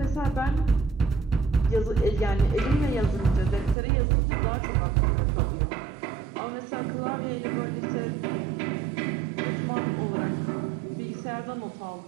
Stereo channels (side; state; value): left; drops out; at 3.8 s